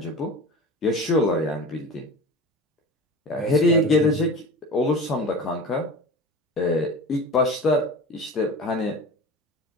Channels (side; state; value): both; normal; correlation 0.33